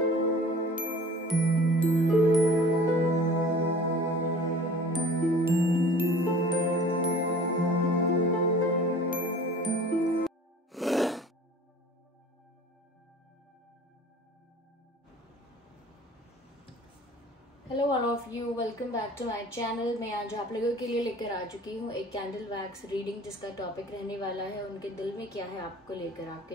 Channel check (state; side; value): normal; both; correlation 0.46